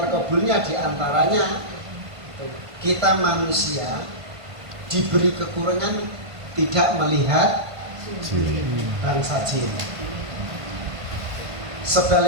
diantaranya kita manusia diberi kekurangan tidak melihat bangsa jin.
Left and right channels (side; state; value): left; late; 1.5 ms